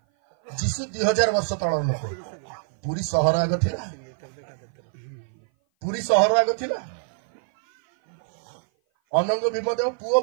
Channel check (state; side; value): silent; left; 57 dB below the other